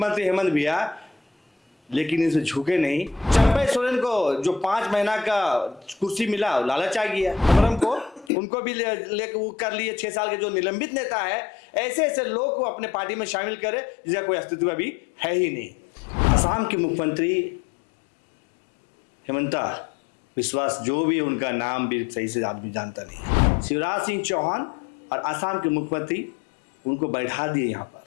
हेमंत भैया, लेकिन इसे झुके नहीं। चंपई सोरेन को जो 5 महीना का कुर्सी मिला लालच आ गया, अमरम को उनको भी लेकर वो कर लिए। 6 साल के जो निलंबित नेता है, ऐसे ऐसे लोग को अपने पार्टी में शामिल करे जिसका कोई अस्तित्व अभी है ही नहीं। असम के मुख्यमंत्री हेमंता विश्वास, जो भी उनका नाम भी सही से आदमी जानता नहीं है, शिवराज सिंह चौहान और असम के मुख्यमंत्री उनको बैठा दिए यहाँ पर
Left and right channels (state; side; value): drops out; right; at 8.3 s